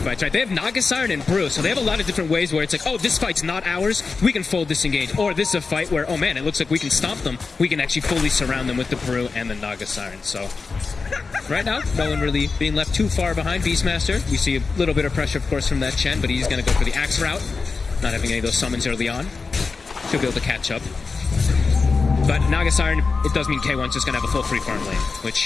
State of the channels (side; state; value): right; quieter; 4.5 dB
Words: fights, right? They have Naga Siren and Brew, so they have a lot of different ways where it's like, oh, this fight's not ours, we can full disengage. Or this is a fight where, oh man, it looks like we can stop them, we can actually fully surround them with the Brew and the Naga Siren. So right now, no one really being left too far behind Beastmaster. We see a little bit of pressure, of course, from that Chen, but he's going to go for the Axe route, not having any of those summons early on. Should be able to catch up. But Naga Siren, it does mean K1's just going to have a full free farm lane,